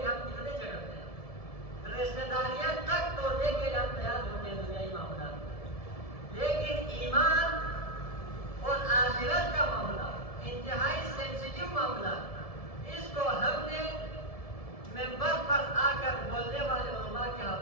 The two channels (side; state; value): right; late; 1.7 ms